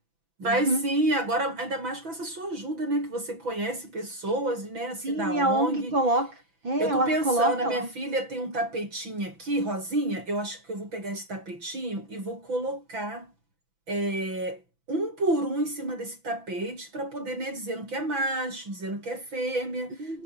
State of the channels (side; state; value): left; late; 6.0 ms